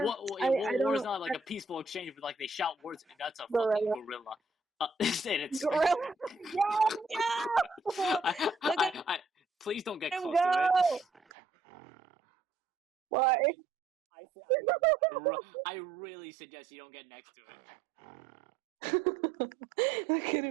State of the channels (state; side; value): drops out; left; at 11.2 s